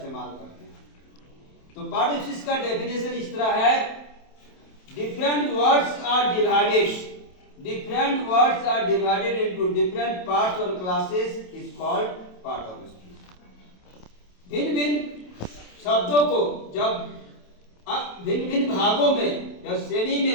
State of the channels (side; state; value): right; late; 27 ms